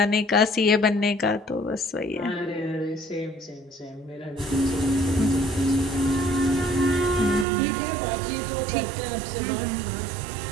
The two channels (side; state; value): left; drops out; at 7.5 s